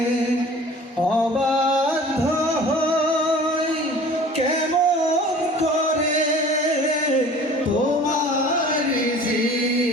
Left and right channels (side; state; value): both; normal; correlation 0.45